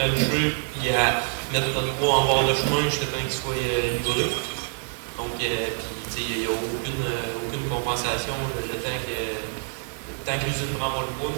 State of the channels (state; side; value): silent; left; 57 dB below the other